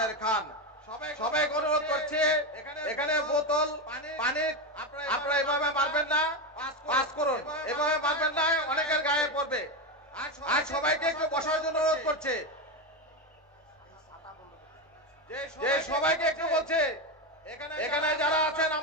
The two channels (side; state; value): both; normal; correlation 0.13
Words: খান। সবাইকে অনুরোধ করছি, এখানে বোতল পানি আপনারা এভাবে মারবেন না, পাস করুন, এভাবে মারবেন না, অনেকের গায়ে পড়বে। আর সবাইকে একটু বসার জন্য অনুরোধ করছে, যে সবাইকে একটু বলছে এখানে যারা আছেন